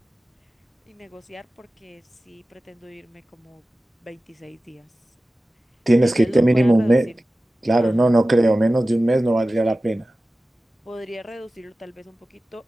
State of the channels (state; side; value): normal; both; correlation 0.96